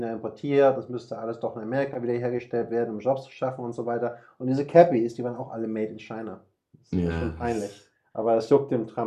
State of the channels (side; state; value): both; identical; correlation 1.00